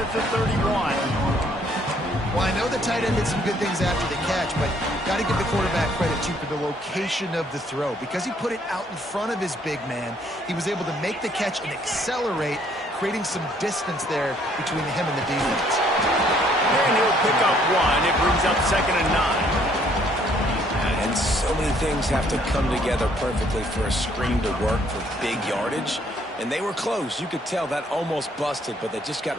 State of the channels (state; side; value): normal; both; correlation 0.65